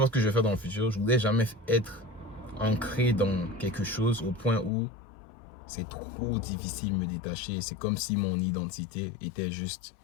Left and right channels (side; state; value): right; drops out; at 4.7 s